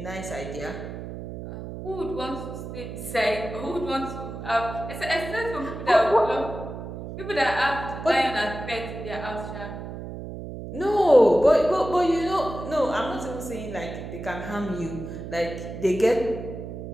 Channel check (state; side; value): noise; right; hum, 9 dB below the sound